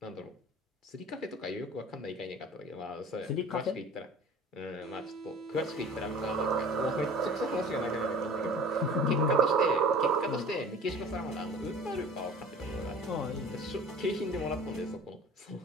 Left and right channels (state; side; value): normal; both; correlation 0.43